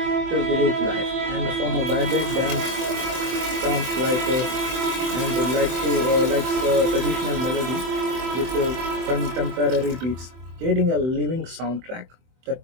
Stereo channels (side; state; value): left; late; 24 ms